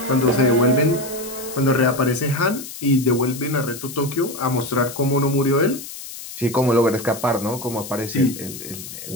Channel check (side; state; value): left; noise; hiss, 12 dB below the sound